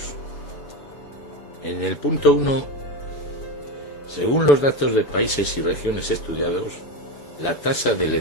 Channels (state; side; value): late; right; 6.9 ms